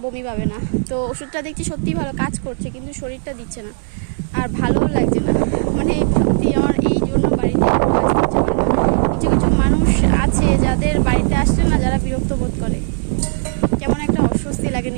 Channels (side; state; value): left; silent; 61 dB below the other